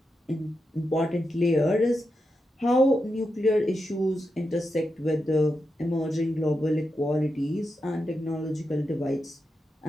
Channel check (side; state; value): both; normal; correlation 0.87